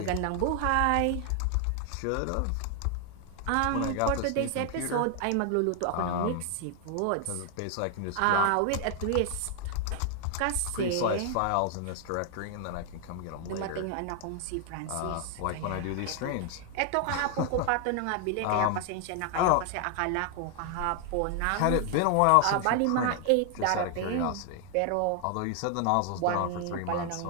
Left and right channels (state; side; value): different; both; correlation 0.00